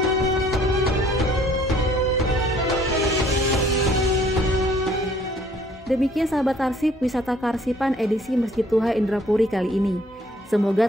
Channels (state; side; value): normal; both; correlation 0.59